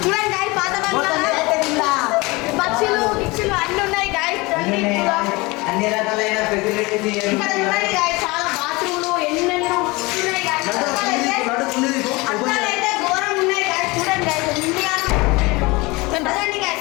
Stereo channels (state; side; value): quieter; right; 23.8 dB